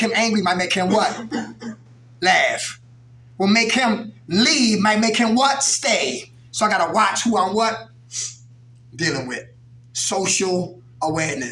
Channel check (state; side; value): identical; both; correlation 1.00